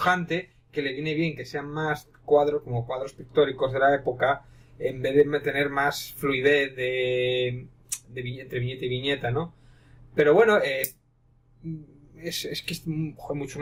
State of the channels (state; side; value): identical; both; correlation 1.00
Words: que le viene bien que sean más cuadros, como cuadros pictóricos de la época, en vez de tener más fluidez entre viñeta y viñeta, ¿no? Pero bueno, es que es mucho